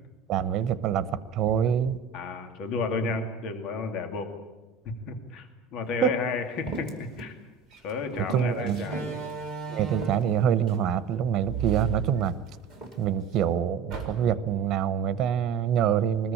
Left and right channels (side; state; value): left; quieter; 6.0 dB